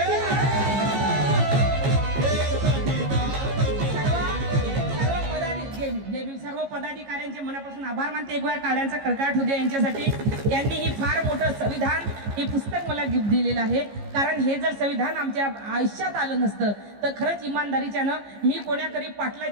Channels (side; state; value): left; late; 15 ms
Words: सर्व पदाधिकाऱ्यांचे मनापासून आभार मानते. एक वेळ काळ्यांचा कडकडाट होऊ द्या यांच्यासाठी. यांनी ही फार मोठं संविधान हे पुस्तक मला गिफ्ट दिलेलं आहे. कारण हे जर संविधान आमच्या आयुष्यात आलं नसतं तर खरंच इमानदारीच्यानं मी कोणाकडे